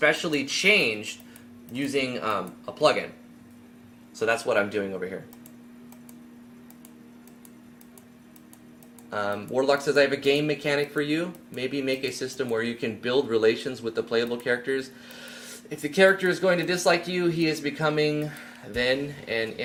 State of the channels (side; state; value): both; identical; correlation 1.00